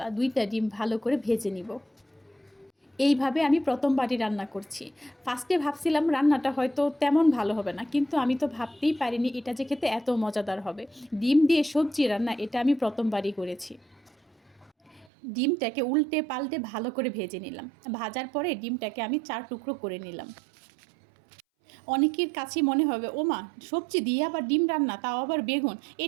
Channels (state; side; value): drops out; left; at 15.1 s